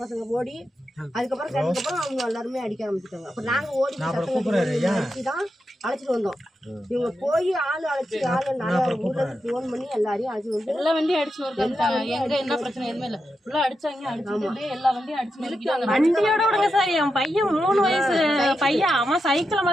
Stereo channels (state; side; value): normal; both; correlation 0.87